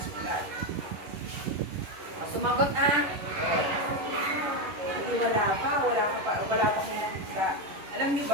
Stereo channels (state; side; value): late; left; 11 ms